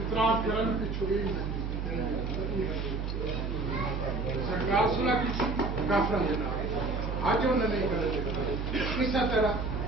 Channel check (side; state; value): right; noise; hum, 3 dB below the sound